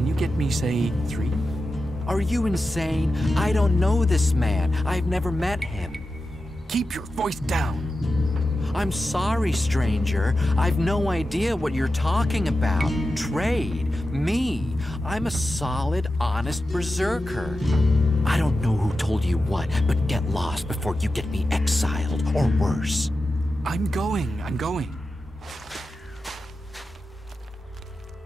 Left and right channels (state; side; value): normal; both; correlation 0.92